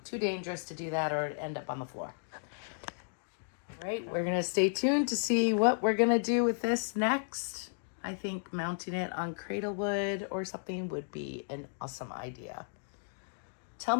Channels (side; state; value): right; silent; digital silence